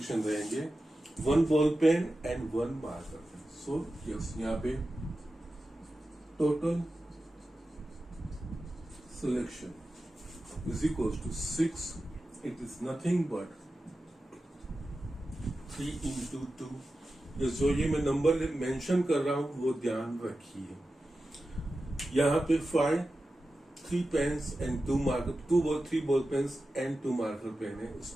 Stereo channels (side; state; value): both; normal; correlation 0.93